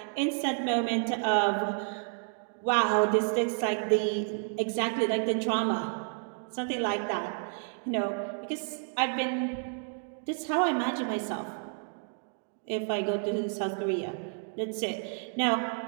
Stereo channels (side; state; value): left; silent; 57 dB below the other